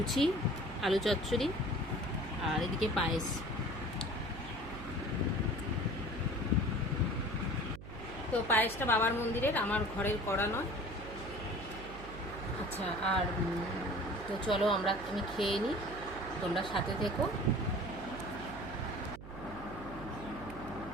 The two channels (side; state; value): right; noise; hum, 13 dB below the sound